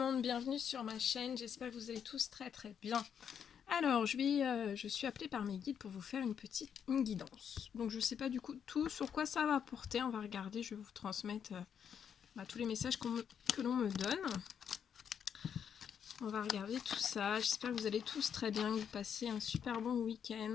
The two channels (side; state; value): right; quieter; 7.9 dB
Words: bienvenue sur ma chaîne, j'espère que vous allez tous très bien. Alors, je suis appelée par mes guides pour vous faire une guidance. Donc je ne sais pas du coup tout sur quoi ça va porter, on va regarder, je vais vous transmettre tous les messages que l'on me donne. On va regarder tout ça, j'espère que vous allez tous très bien, que vous passez un super bon